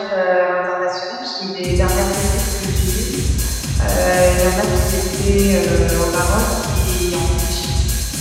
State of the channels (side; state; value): both; identical; correlation 1.00